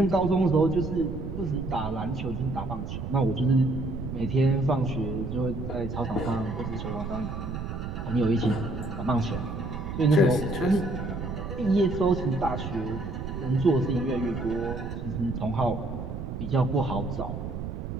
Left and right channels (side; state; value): right; noise; rumble, 6 dB below the sound